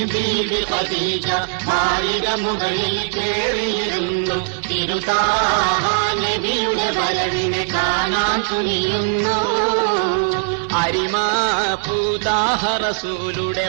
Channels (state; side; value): silent; left; 66 dB below the other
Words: ബീബി ഖദീജ മാളിക മുകളിൽ കേറിയിരുന്നു. തിരുതാഹ നബിയുടെ വരവിനെ കാണാൻ തുനിയുന്നു. അരിമാപൂതാഹ റസൂലുടെ